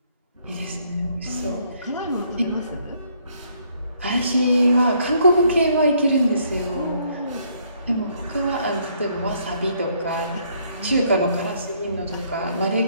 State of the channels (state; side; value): inverted; both; correlation -0.68